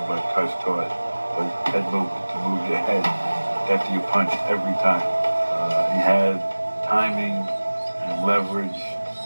what Cus taught was head movement, to move your head after you punched every time. He had timing and leverage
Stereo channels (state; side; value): inverted; both; correlation -1.00